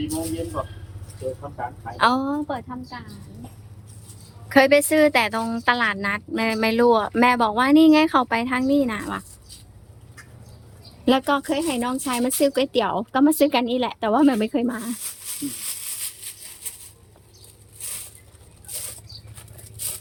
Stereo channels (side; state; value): both; identical; correlation 1.00